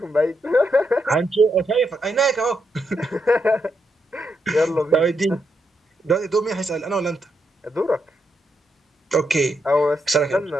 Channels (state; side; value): normal; both; correlation 0.81